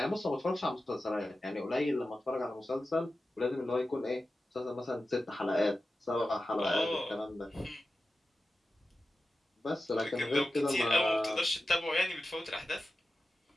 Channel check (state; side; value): normal; both; correlation 0.93